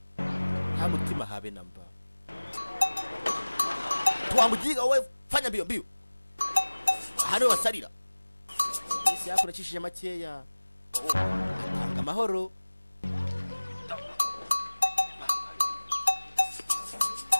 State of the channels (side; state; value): both; inverted; correlation -1.00